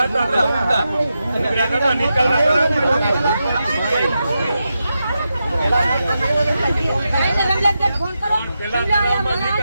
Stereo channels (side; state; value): both; inverted; correlation -0.88